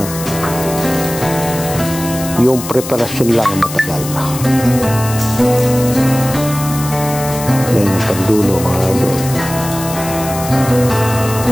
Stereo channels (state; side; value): noise; left; hiss, 10 dB below the sound